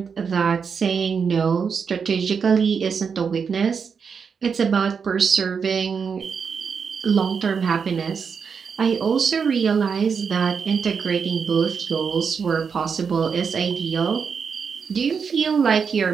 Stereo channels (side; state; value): left; quieter; 6.1 dB